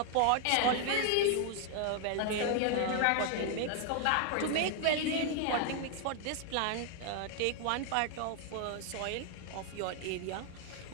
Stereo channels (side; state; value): both; different; correlation 0.00